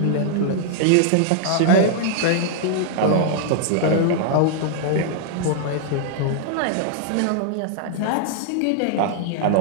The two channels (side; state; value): both; different; correlation -0.01